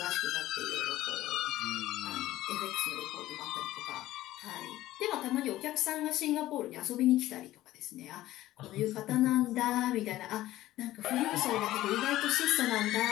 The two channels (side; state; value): right; quieter; 15.3 dB